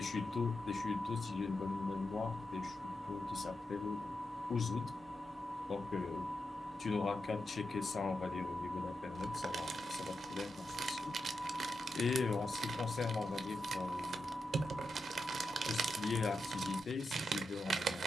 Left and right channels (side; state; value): both; normal; correlation 0.87